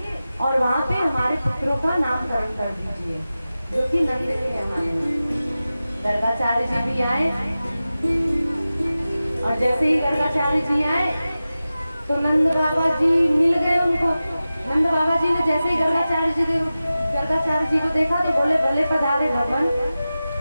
और वहाँ पे हमारे पुत्रों का नामकरण कर दीजिए, जो कि नंद के हमारे। गर्गाचार्य जी भी आए, और जैसे ही गर्गाचार्य जी आए तो नंद बाबा जी मिल गए उनको। नंद बाबा जी ने जैसे ही गर्गाचार्य जी को देखा तो बोले, भले पधारे भगवान।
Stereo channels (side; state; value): both; inverted; correlation -0.95